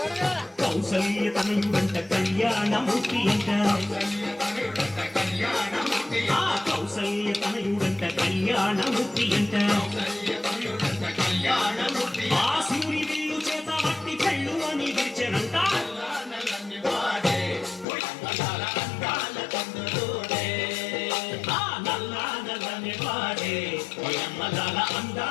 కౌసల్య తనయుడంట కళ్యాణమూర్తి అంట, కళ్యాణముడిట కళ్యాణముడి, ఆ కౌసల్య తనయుడంట కళ్యాణమూర్తి అంట, కళ్యాణముడిట కళ్యాణముడి. ఆ శివుని విల్లు చేత పట్టి పెళ్ళు అని విరిచెనంట, నల్లా నల్లని వాడే ఒయమ్మలాల అందాల చంద్రుడే, ఆ నల్లా నల్లని వాడే ఒయమ్మలాల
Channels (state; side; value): drops out; right; at 17.9 s